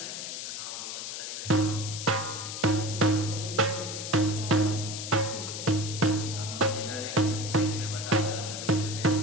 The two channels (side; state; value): left; noise; hiss, 6 dB below the sound